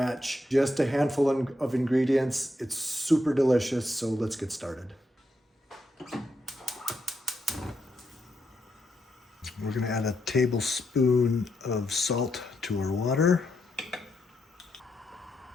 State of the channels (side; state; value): both; normal; correlation 0.81